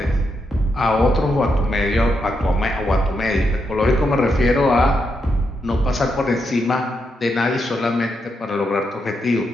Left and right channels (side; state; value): both; normal; correlation 0.82